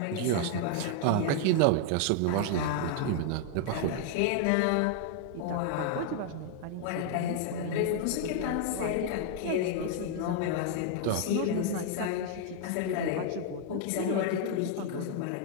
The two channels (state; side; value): different; both; correlation 0.00